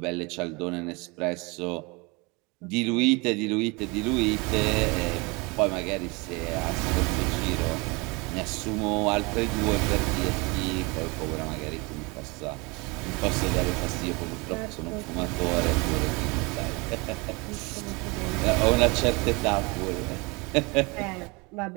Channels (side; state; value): left; quieter; 27.2 dB